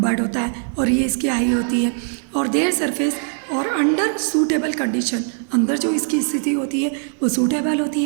होता है और ये इसकी आई होती है. और देयर सरफेस और अंडर सूटेबल कंडीशन, अंदर जो इसकी स्थिति होती है वो सूटेबल होती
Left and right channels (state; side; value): silent; left; 59 dB below the other